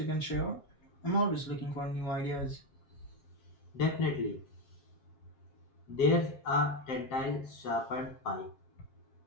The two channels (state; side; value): late; right; 7.4 ms